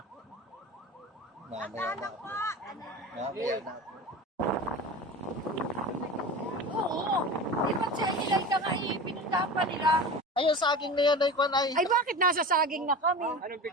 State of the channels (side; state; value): both; normal; correlation 0.32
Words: Mamaya na. Oo. Di ba't sa ilan ka nga ipinundahan pa nila? Ayun, saging na yan ay kwan ay. Ay bakit nasa saging na kami? Anong